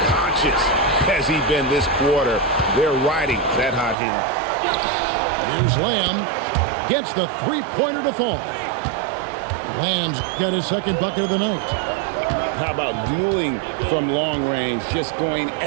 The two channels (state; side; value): drops out; left; at 4.0 s